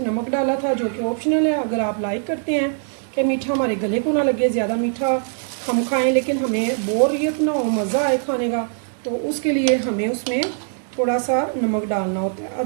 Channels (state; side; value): silent; left; digital silence